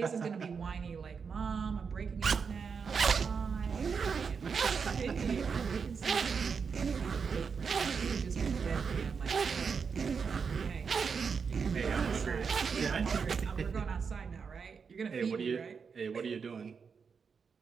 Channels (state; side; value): quieter; left; 5.8 dB